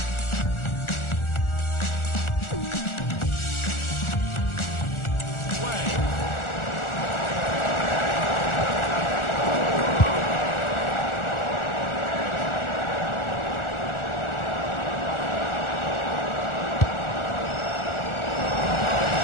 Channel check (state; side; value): late; right; 1.4 ms